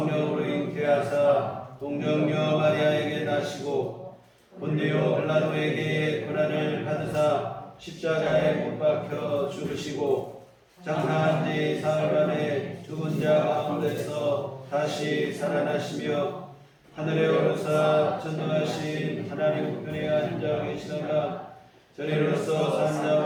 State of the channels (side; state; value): both; identical; correlation 1.00